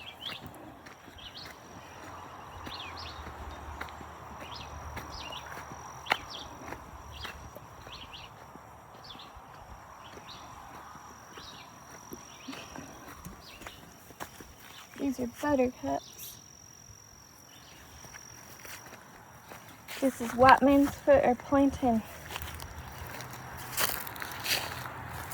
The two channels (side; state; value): both; identical; correlation 1.00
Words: These are buttercups. This is white man's foot or plantain.